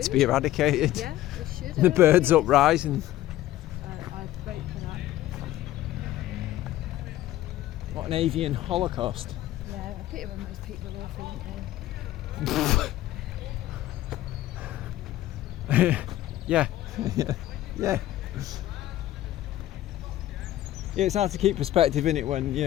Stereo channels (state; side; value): quieter; right; 14.4 dB